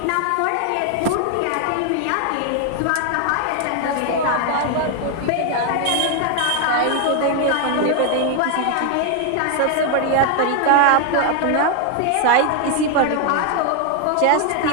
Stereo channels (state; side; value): different; both; correlation 0.00